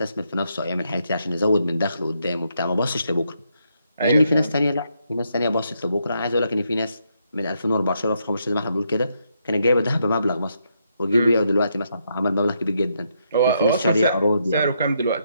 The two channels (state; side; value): inverted; both; correlation -0.78